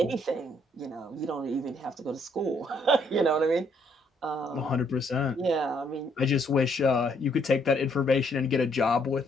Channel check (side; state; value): both; normal; correlation 0.69